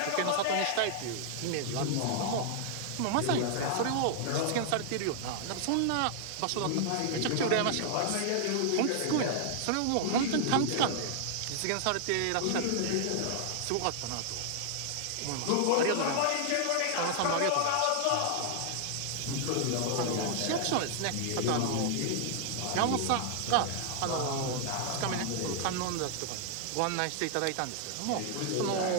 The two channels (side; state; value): both; different; correlation -0.01